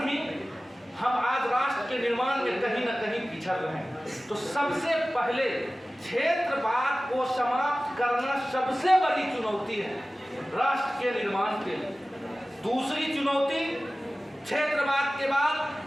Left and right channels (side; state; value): both; normal; correlation 0.97